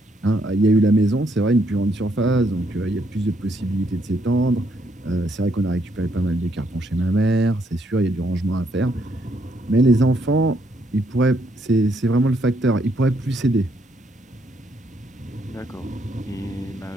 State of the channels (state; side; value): normal; both; correlation 0.73